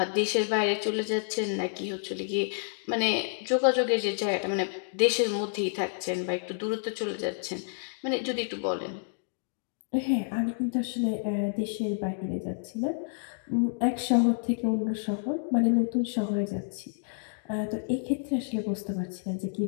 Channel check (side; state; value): right; silent; digital silence